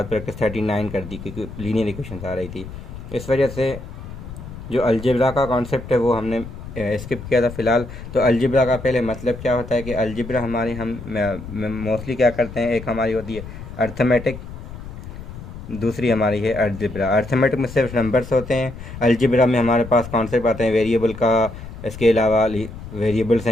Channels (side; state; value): left; noise; rumble, 12 dB below the sound